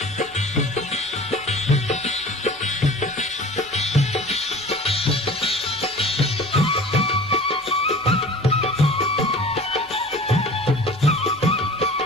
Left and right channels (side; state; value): both; normal; correlation 0.42